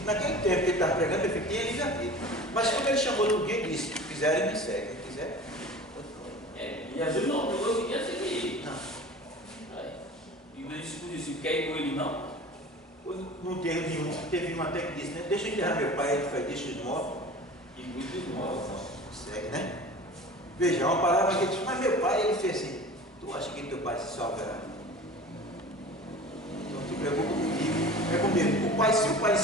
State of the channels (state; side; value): normal; both; correlation 0.39